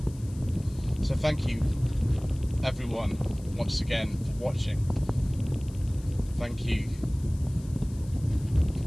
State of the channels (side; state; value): left; noise; hiss, 23 dB below the sound